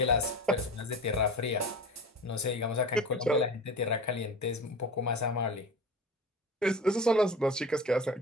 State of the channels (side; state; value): both; normal; correlation 0.34